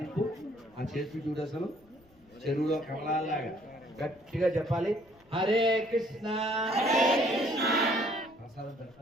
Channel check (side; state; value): left; noise; rumble, 29 dB below the sound